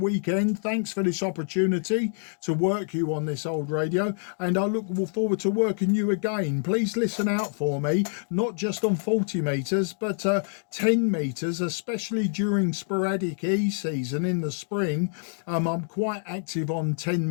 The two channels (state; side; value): silent; right; digital silence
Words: Thanks for this opportunity to work you on this old radio, and I look forward to working you again. Please listen out for me, not just on 40 meters, but 10 meters, especially during sporadic E season in the spring. I'm quite active on 10